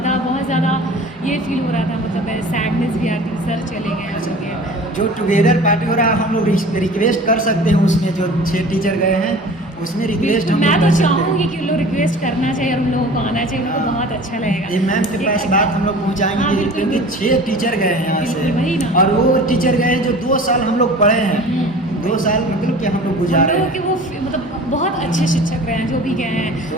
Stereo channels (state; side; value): normal; both; correlation 0.42